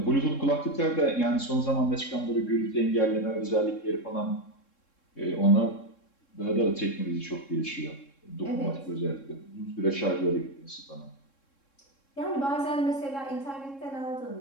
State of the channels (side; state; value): right; late; 3.7 ms